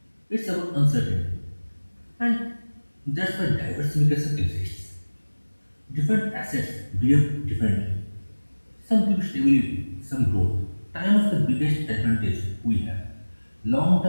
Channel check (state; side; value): inverted; both; correlation -1.00